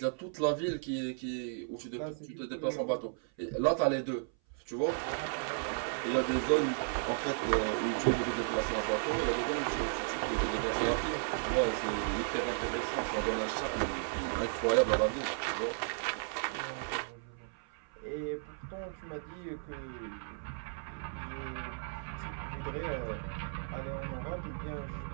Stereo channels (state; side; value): silent; left; 55 dB below the other